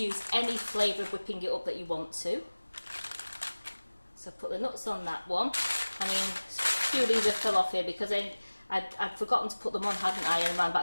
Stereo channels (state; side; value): inverted; both; correlation -1.00